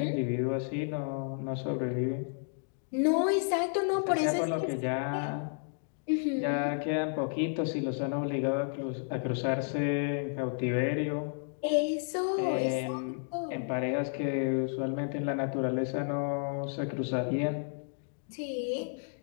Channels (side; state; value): right; silent; 57 dB below the other